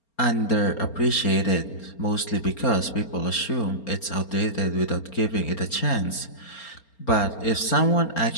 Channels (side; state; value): right; late; 4.3 ms